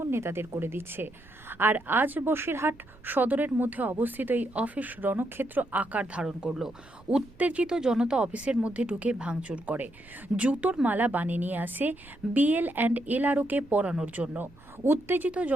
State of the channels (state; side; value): noise; right; rumble, 24 dB below the sound